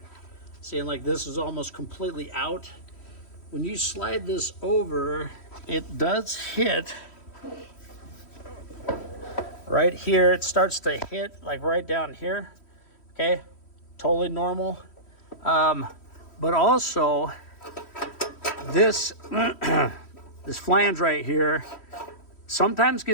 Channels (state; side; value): late; right; 3.1 ms